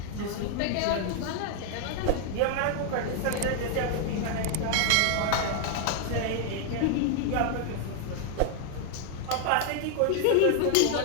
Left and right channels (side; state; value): both; different; correlation 0.00